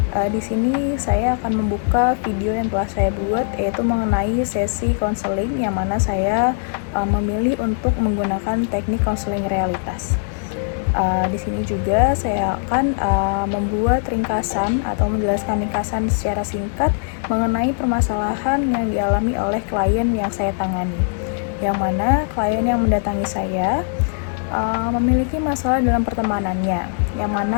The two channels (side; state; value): right; silent; digital silence